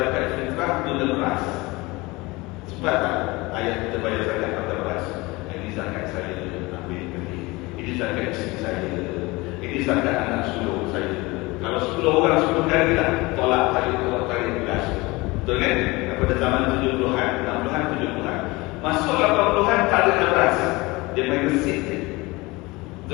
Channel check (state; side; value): quieter; right; 22.9 dB